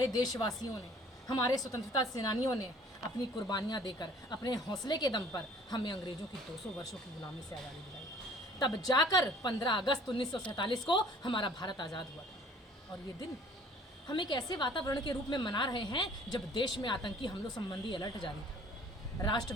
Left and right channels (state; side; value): normal; both; correlation 0.53